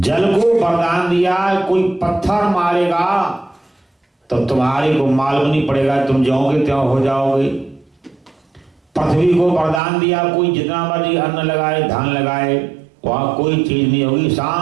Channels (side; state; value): left; drops out; at 9.8 s